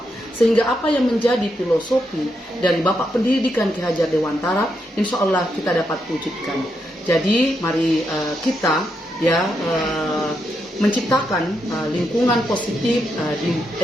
sehingga apa yang menjadi filosofi dari Bapak Pendidikan Ki Hajar Dewantara insya Allah kita dapat wujudkan. Jadi mari kita menciptakan lingkungan positif di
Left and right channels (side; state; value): both; normal; correlation 0.82